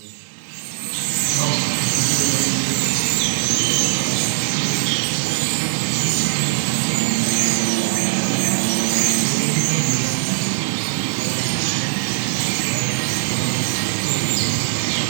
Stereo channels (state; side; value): silent; left; digital silence